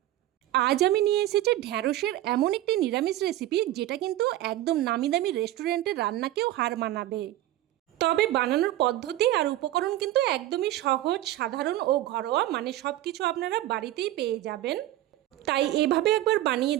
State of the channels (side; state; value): left; quieter; 14.7 dB